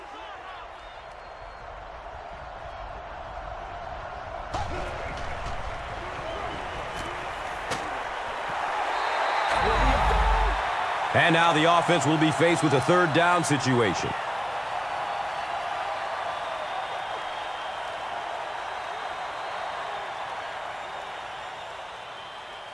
And now the offense will be faced with a third down situation.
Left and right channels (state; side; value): identical; both; correlation 1.00